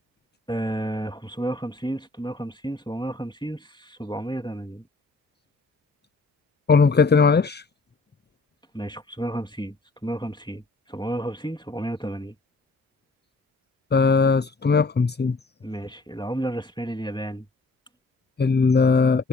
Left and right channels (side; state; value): right; quieter; 3.6 dB